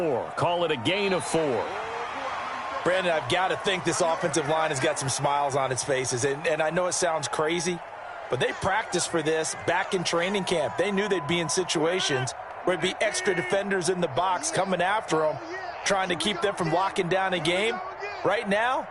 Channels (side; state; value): both; identical; correlation 1.00